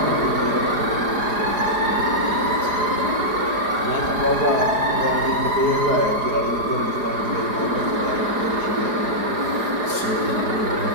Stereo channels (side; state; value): left; late; 4.8 ms